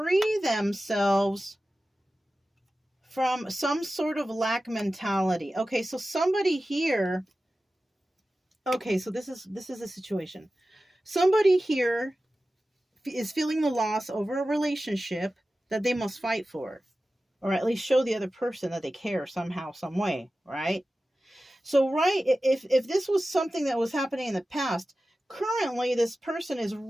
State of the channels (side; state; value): both; normal; correlation 0.95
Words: themselves from some sort of lack mentality. Okay, so somebody here, okay, so this is a situation. Somebody here is feeling the loss over a relationship that they must fight for, or at least show the other person that they care somehow, some way, right? So, right, if this was something that was happening in the past, currently this person is